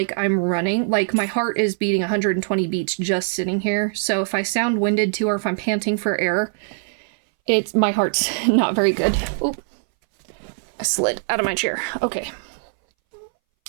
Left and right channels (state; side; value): silent; left; 62 dB below the other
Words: I'm running, like my heart is beating 120 beats just sitting here, so if I sound winded too, or if I'm panting for air, my heart's not very good. Oop. I slid out of my chair. Okay.